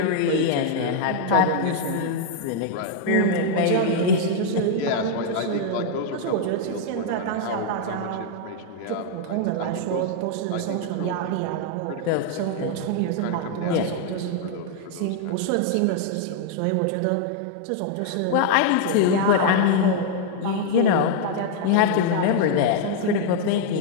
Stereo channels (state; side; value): different; both; correlation 0.00